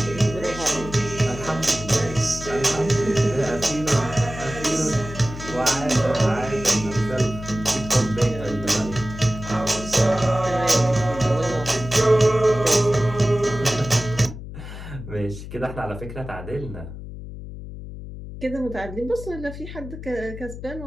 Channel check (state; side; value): noise; left; hum, 11 dB below the sound